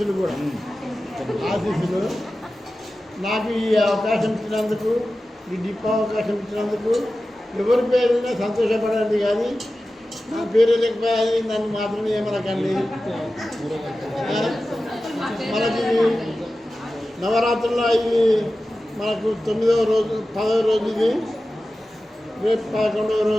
కూడా ఆశీస్సులు. నాకు ఈ అవకాశం ఇచ్చినందుకు, ఈ డిప్ అవకాశం ఇచ్చినందుకు ఎవరి పేరున్నా సంతోషపడండి, కానీ నా పేరు లేకపోయి నన్ను మాత్రం ఏమనకండి. మనకి నవరాత్రుల్లో ఇది మనకు 9వ రోజు 10వ రోజు, ఇది రేపు 11వ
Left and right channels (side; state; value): both; normal; correlation 0.94